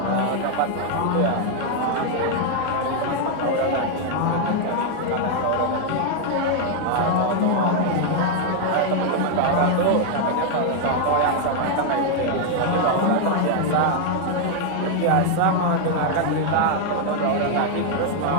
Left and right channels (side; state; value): both; different; correlation 0.00